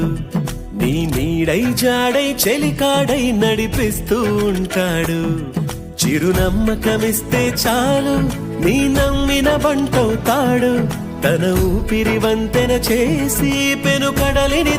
నీ నీడై జాడై చెలికాడై నడిపిస్తూ ఉంటాడు చిరునమ్మకమిస్తే చాలు నీ నమ్మిన బంటవుతాడు తన ఊపిరి వంతెన చేసి పెను కడలిని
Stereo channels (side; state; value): both; identical; correlation 1.00